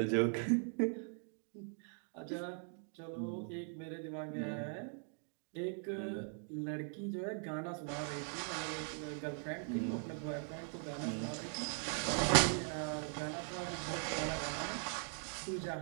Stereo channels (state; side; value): silent; left; 51 dB below the other